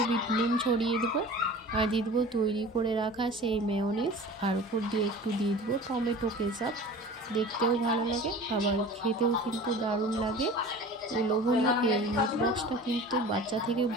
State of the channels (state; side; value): normal; both; correlation 0.40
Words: বিট নুন ছড়িয়ে দেবো আর দিয়ে দেবো তৈরি করে রাখা সেই মেয়োনিজ, আর উপর দিয়ে একটু দিয়ে দেবো টমেটো কেচাপ। দেখতেও ভালো লাগে, আবার খেতেও কিন্তু দারুণ লাগে। এই লোভনীয় এই মিট বক্সটা কিন্তু বাচ্চা থেকে